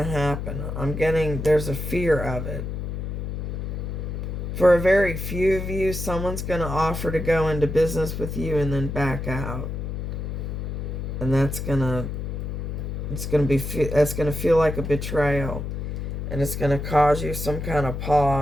happen. There's a fear of it. For a very few of you, someone's going to offer to go into business with you and then back out. And that's going to feel like a betrayal. And it's going to cause you some kind of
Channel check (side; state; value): left; noise; hum, 4 dB below the sound